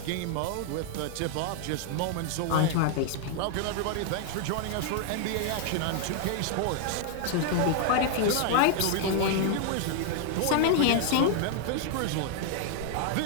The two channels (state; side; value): different; both; correlation 0.00